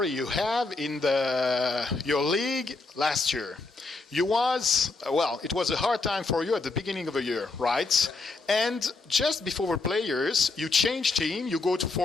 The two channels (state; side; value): quieter; right; 3.6 dB